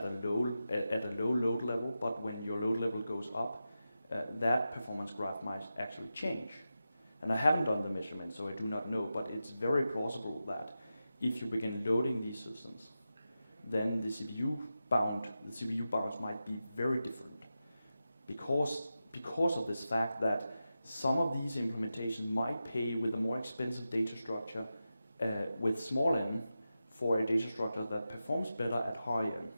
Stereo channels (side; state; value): both; inverted; correlation -0.91